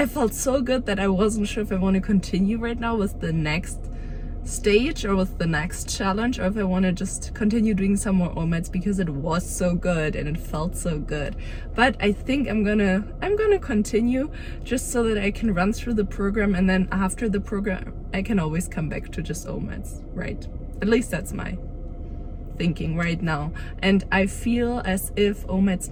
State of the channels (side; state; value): both; identical; correlation 1.00